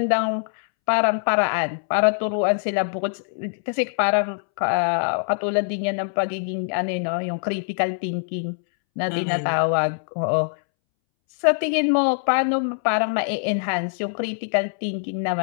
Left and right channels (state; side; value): silent; right; 63 dB below the other